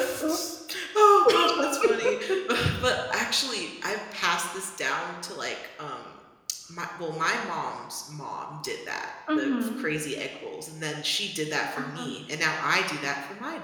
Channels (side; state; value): both; identical; correlation 1.00